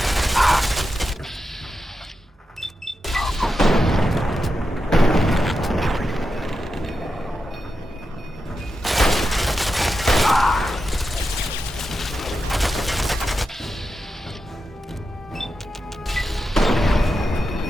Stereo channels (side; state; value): both; normal; correlation 0.89